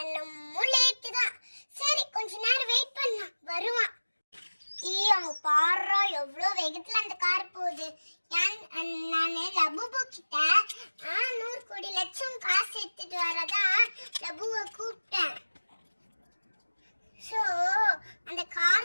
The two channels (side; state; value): both; inverted; correlation -1.00